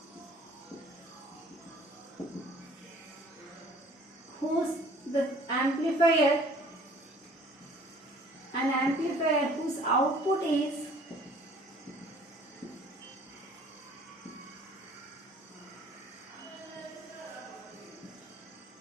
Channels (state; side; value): normal; both; correlation 0.53